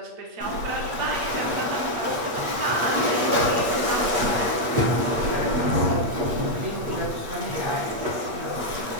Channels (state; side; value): late; left; 8.3 ms